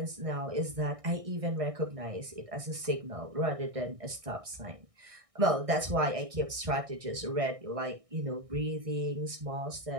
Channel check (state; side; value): late; left; 1.6 ms